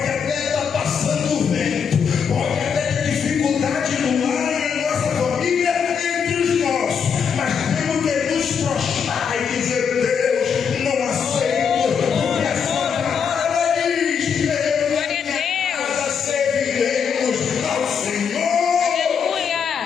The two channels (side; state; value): right; quieter; 6.8 dB